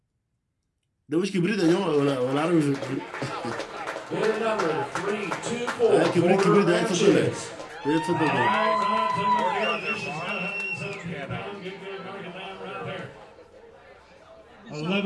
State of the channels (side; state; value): both; identical; correlation 1.00